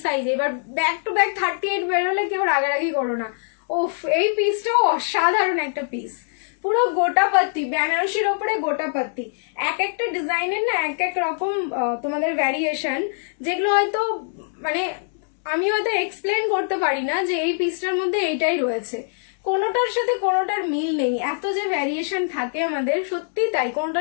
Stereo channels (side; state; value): right; silent; digital silence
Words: size. এবার ব্যাক টু ব্যাক 38 বেরোলে কেউ রাগারাগি করো না। ওফ, এই পিসটাও অসাধারণ একটা পিস, পুরো গোটা পাত্তি, বেনারসির উপরে গোটা পাত্তি। এক একটা ডিজাইনের না এক এক রকম তোমাদের ভ্যারিয়েশন, যেগুলো হয়তো মানে আমি হয়তো এক্সপ্লেন করতে পারি না যে এই পিসটার মধ্যে এইটাই রয়েছে, কোনোটার সাথে কোনোটার মিল নেই। এত যে ভ্যারিয়েশন থাকে আমাদের, সত্যি তাই,